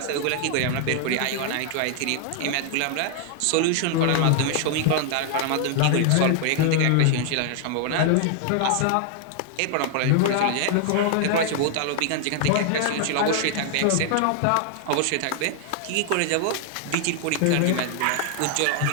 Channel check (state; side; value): different; both; correlation 0.00